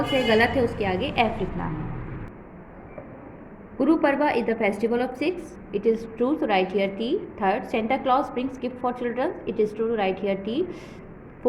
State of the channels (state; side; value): identical; both; correlation 1.00